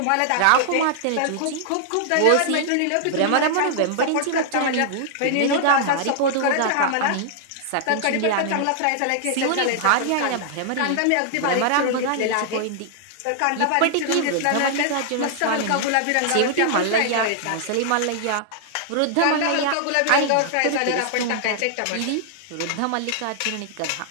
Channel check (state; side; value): different; both; correlation -0.01